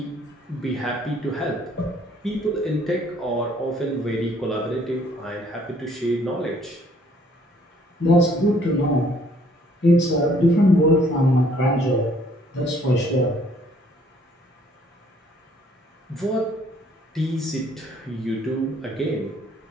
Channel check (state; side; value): normal; both; correlation 0.62